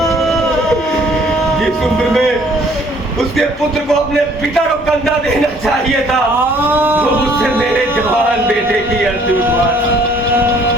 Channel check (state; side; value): normal; both; correlation 0.59